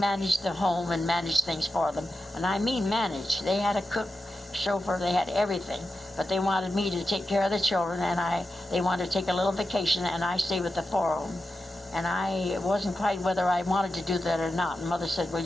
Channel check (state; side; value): normal; both; correlation 0.90